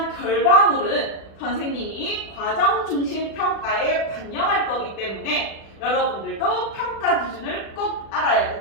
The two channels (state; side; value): late; right; 36 ms